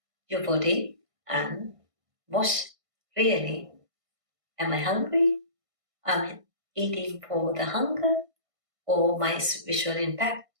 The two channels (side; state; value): left; late; 1.5 ms